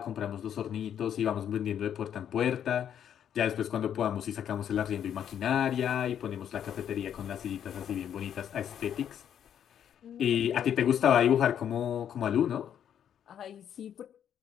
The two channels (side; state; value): right; quieter; 9.3 dB